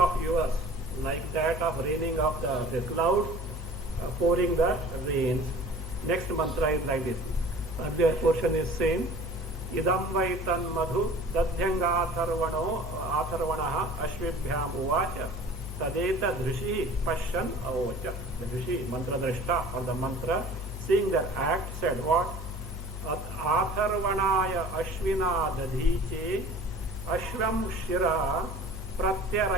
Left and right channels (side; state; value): both; normal; correlation 0.45